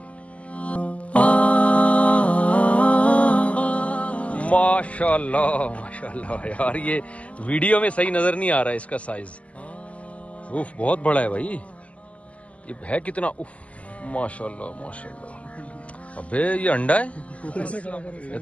माशाल्लाह माशाल्लाह यार, ये वीडियो में सही नजर नहीं आ रहा है इसका साइज। उफ बहुत बड़ा है भाई, ये है कितना? उफ माशाल्लाह माशाल्लाह। अबे ये अंडा है, ये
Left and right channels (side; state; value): right; late; 0.066 ms